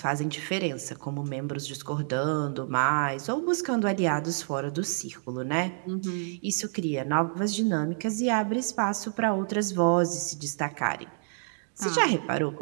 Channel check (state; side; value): silent; left; digital silence